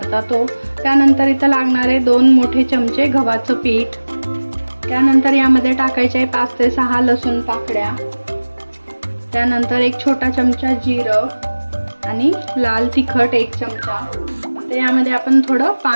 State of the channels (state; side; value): inverted; both; correlation -1.00